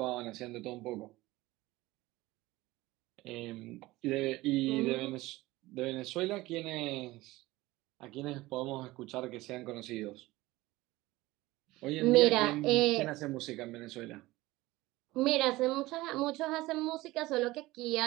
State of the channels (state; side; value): quieter; left; 19.1 dB